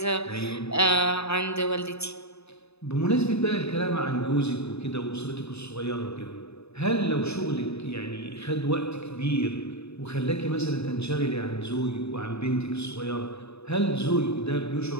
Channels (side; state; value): right; late; 0.79 ms